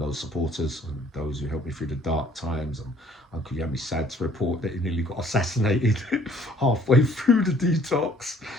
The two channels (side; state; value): both; normal; correlation 0.59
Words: supporters and those who helped me through the dark times. And Uncle Yami's sad to report that he nearly got assassinated halfway through the detox